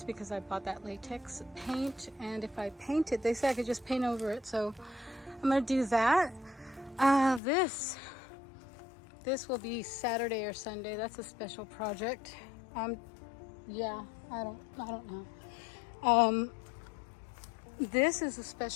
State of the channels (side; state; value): right; drops out; at 7.4 s